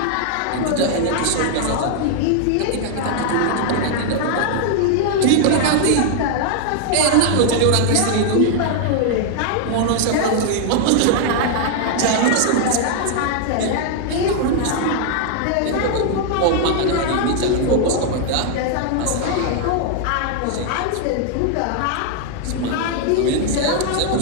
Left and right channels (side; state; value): both; different; correlation 0.00